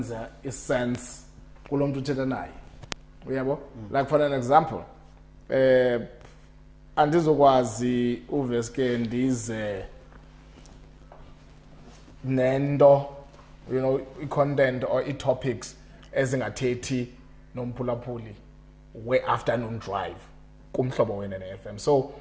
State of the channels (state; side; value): identical; both; correlation 1.00